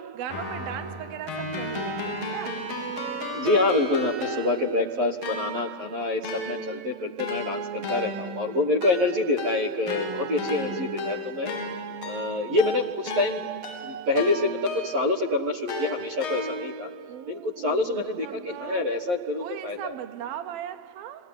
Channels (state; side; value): late; left; 11 ms